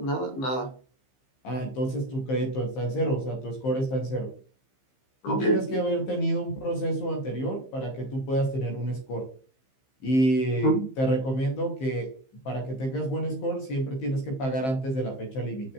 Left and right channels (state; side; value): late; right; 15 ms